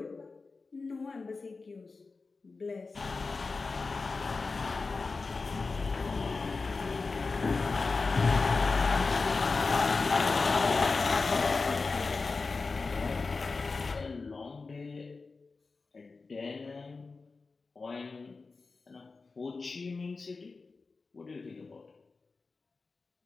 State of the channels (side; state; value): right; quieter; 4.1 dB